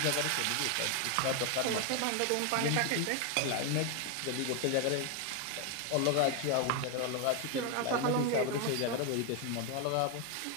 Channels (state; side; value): different; both; correlation 0.01